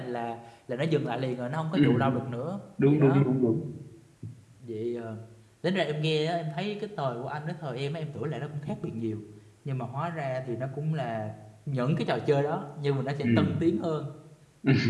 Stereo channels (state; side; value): identical; both; correlation 1.00